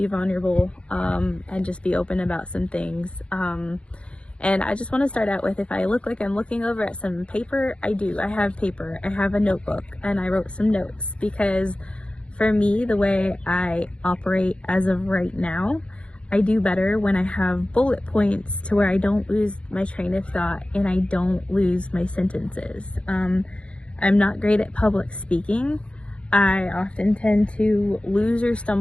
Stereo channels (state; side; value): late; right; 0.059 ms